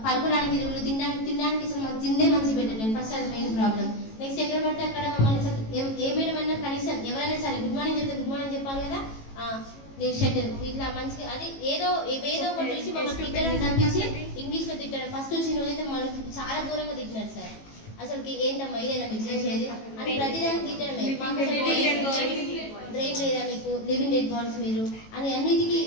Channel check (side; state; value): right; late; 18 ms